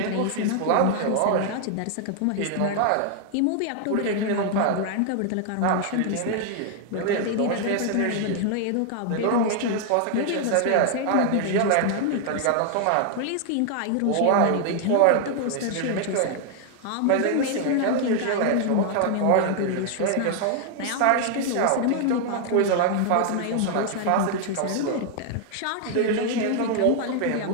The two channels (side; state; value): both; different; correlation 0.00